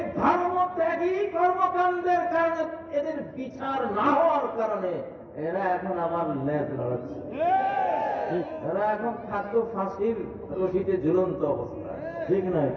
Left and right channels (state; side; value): identical; both; correlation 1.00